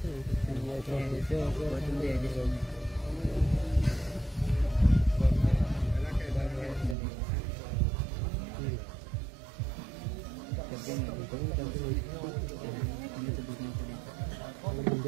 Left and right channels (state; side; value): drops out; left; at 7.0 s